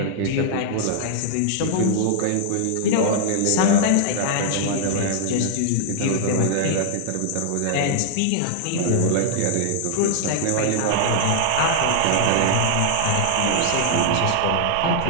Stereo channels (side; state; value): both; different; correlation -0.01